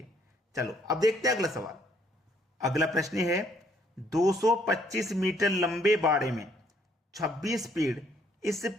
चलो अब देखते हैं अगला सवाल। अगला प्रश्न है, 225 मीटर लंबे बाड़े में 26 पेड़ इस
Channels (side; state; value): both; normal; correlation 0.66